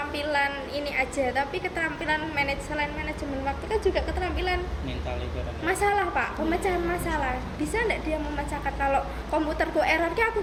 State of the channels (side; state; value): both; identical; correlation 1.00